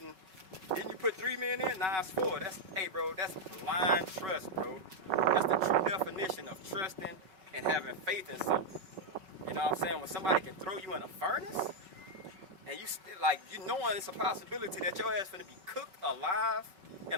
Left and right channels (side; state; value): left; late; 5.3 ms